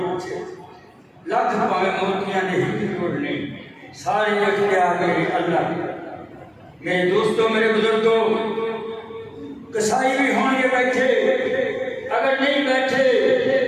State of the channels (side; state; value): both; identical; correlation 1.00